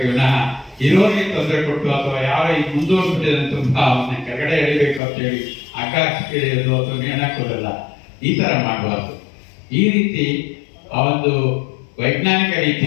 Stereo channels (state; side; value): drops out; right; at 5.0 s